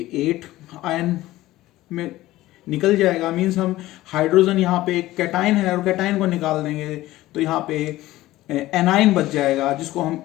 8 आयन में निकल जाएगा। मीन्स हम हाइड्रोजन यहाँ पे एक कैटाइन है और कैटाइन को निकाल देंगे तो यहाँ पे एनाइन बच जाएगा, जिसको हम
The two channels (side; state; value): right; quieter; 16.6 dB